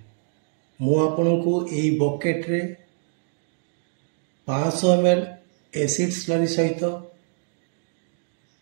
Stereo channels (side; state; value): left; silent; 62 dB below the other